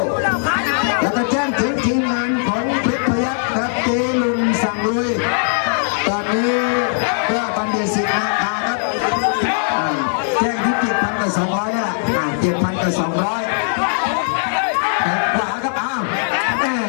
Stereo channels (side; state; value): right; silent; digital silence